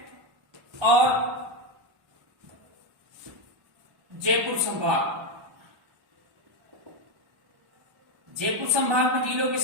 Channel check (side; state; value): left; late; 1.1 ms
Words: और जयपुर संभाग, जयपुर संभाग में जिलों की